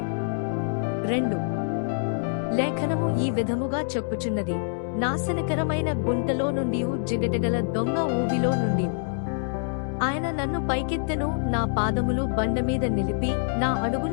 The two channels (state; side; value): silent; right; digital silence